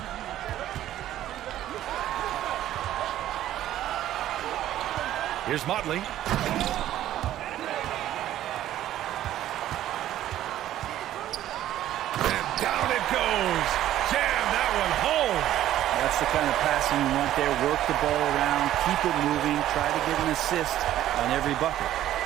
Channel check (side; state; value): left; quieter; 12.8 dB